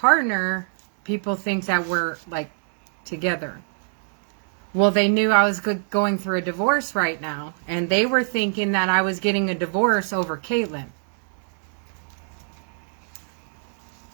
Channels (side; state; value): left; silent; 63 dB below the other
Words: people think that we're like together. Well, they knew I was going through a divorce right now, and they were thinking that I was getting a divorce over Caitlin.